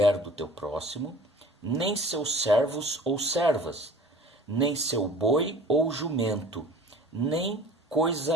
do teu próximo, nem seus servos ou servas, nem seu boi ou jumento, nem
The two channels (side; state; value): both; normal; correlation 0.45